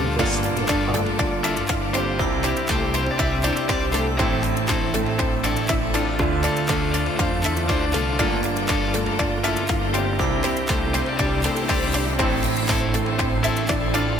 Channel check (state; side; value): normal; both; correlation 0.70